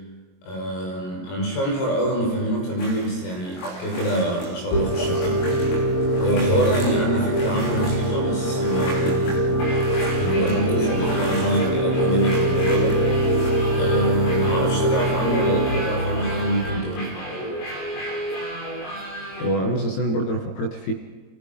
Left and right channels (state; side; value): late; right; 22 ms